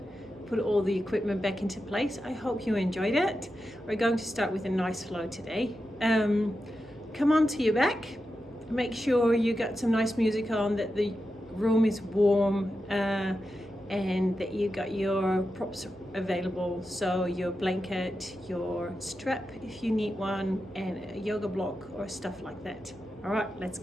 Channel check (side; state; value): both; normal; correlation 0.89